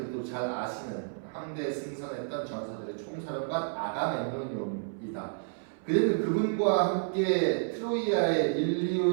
잘 아시는 함대에 승선했던 전사들의 총사령관 아가멤논이다. 그는 그분과 함께 트로이아의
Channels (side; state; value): left; silent; 57 dB below the other